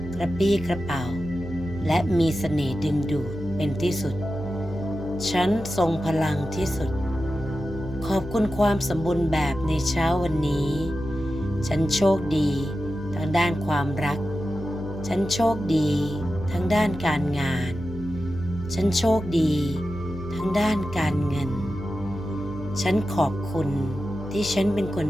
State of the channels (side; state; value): left; noise; hum, 13 dB below the sound